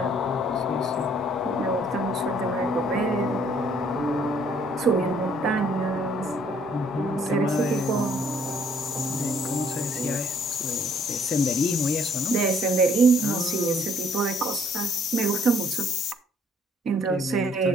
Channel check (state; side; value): normal; both; correlation 0.63